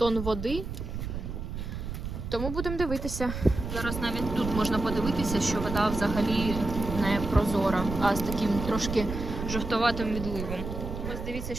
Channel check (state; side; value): noise; right; rumble, 6 dB below the sound